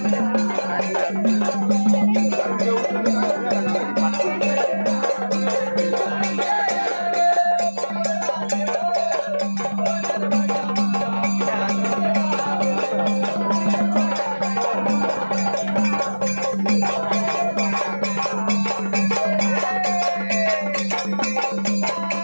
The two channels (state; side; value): inverted; both; correlation -1.00